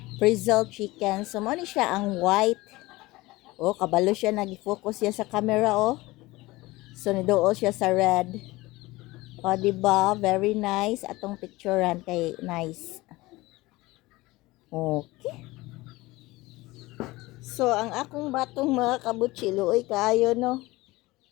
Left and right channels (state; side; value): quieter; right; 20.3 dB